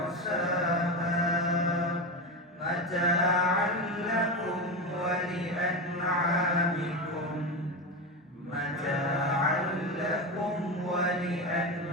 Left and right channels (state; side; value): normal; both; correlation 0.18